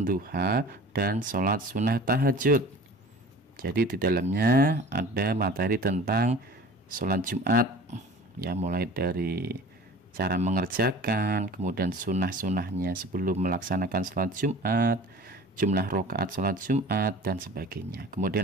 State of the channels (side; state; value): both; normal; correlation 0.42